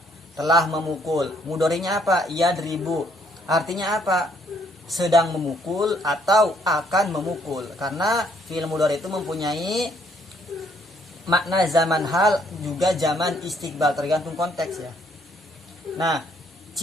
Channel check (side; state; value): both; normal; correlation 0.67